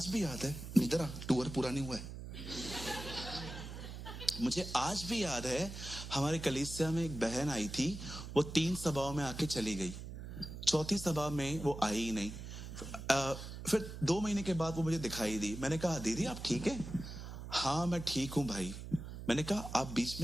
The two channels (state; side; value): noise; right; hum, 9 dB below the sound